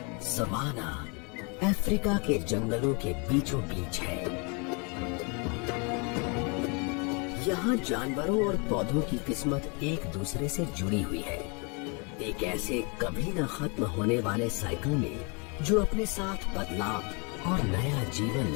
सवाना अफ्रीका के जंगलों के बीचों बीच है। यहाँ जानवरों और पौधों की किस्मत एक दूसरे से जुड़ी हुई है, एक ऐसे कभी न खत्म होने वाले साइकिल में जो अपने साथ बदलाव और नया जीवन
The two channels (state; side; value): quieter; right; 33.4 dB